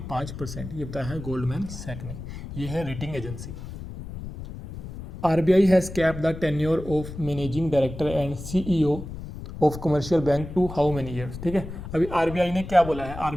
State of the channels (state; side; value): noise; left; rumble, 10 dB below the sound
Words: ये बताया है गोल्डमैन सैक ने। ये है rating agency. RBI has cap the tenure of managing director and CEO of commercial bank to how many years. ठीक है, अभी RBI ने क्या बोला है,